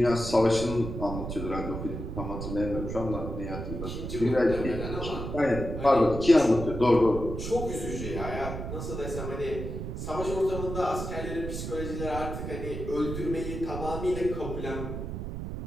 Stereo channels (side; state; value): right; noise; rumble, 6 dB below the sound